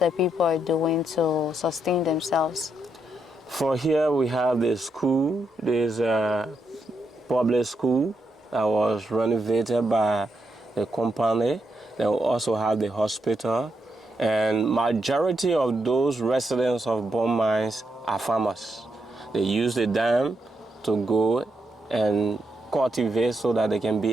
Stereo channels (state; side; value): normal; both; correlation 0.81